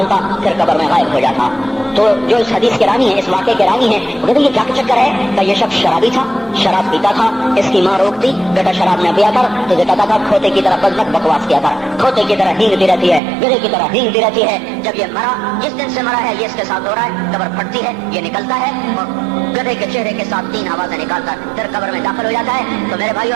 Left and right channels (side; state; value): left; drops out; at 13.2 s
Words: پھر قبر میں غائب ہو جاتا. تو جو اس حدیث کے راوی ہیں, اس واقعے کے راوی ہیں, وہ کہتے ہیں یہ کیا چکر ہے؟ کہ یہ شخص شرابی تھا, شراب پیتا تھا. اس کی ماں روکتی, بیٹا شراب نہ پیا کر, تو یہ کہتا تھا کھوتے کی طرح بزنک بکواس کیا کر, کھوتے کی طرح ہینگتی رہتی ہے, گدھے کی طرح ہینگتی رہتی ہے. جب یہ مرا, جس دن سے مرا ہے یہ اس کے ساتھ ہو رہا ہے, قبر پھٹتی ہے, یہ نکلتا ہے اور گدھے کے چہرے کے ساتھ 3 آوازیں نکالتا پھر قبر میں داخل ہو جاتا ہے. تو میرے بھائیو,